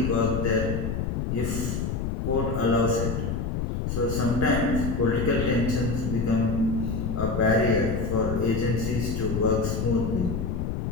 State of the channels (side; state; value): left; noise; rumble, 2 dB below the sound